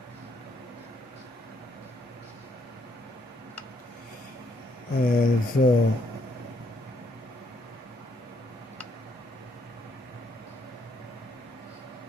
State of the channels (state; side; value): normal; both; correlation 0.71